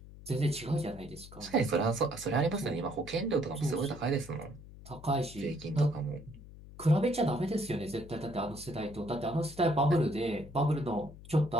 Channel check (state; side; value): noise; left; hum, 17 dB below the sound